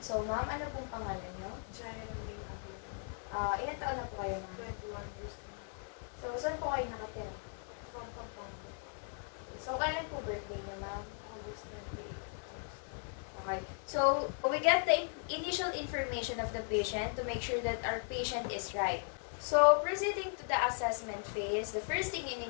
So, ma'am, ano pong pangalan nyo? Ilan taon na po kayo, ma'am? 21 years. So, saan po kayo nakatira? So, kailan po birthday niya, ma'am? August 28. Okay. So, we get the initial information of the patient to make sure that our patient is right. So, proceeding to the assessment phase, the first thing you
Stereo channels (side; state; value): right; silent; 53 dB below the other